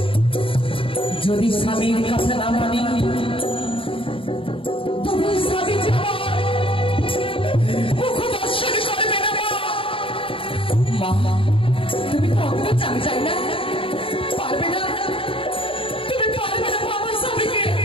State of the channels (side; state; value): right; late; 0.26 ms